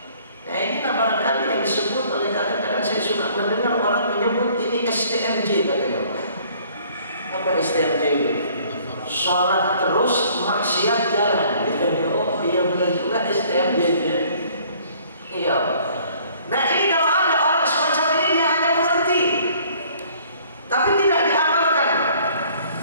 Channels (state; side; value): inverted; both; correlation -0.57